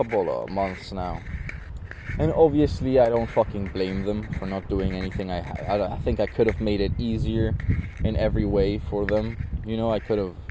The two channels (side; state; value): both; identical; correlation 1.00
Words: of months now. And obviously I don't fucking blame them for not doing anything. I think I could have made it easier in every way for them. You know, I could have,